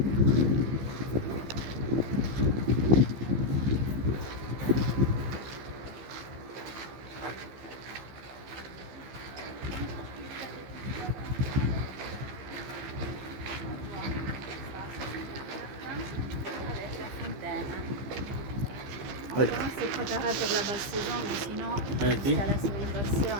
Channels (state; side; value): late; left; 15 ms